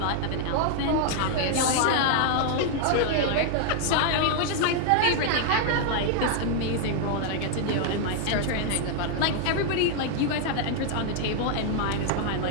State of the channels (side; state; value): both; different; correlation 0.00